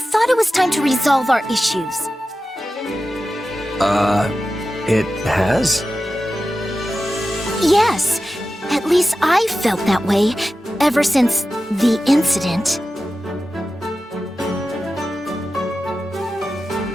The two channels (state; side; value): normal; both; correlation 0.93